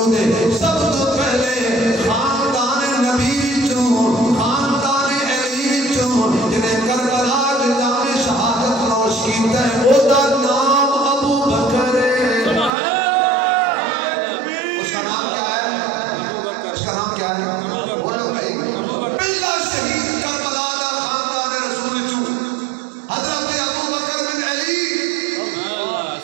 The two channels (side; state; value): left; drops out; at 12.7 s